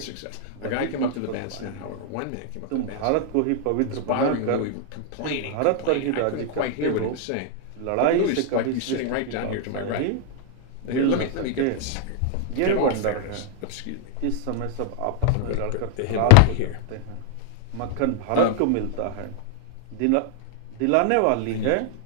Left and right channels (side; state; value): both; different; correlation 0.00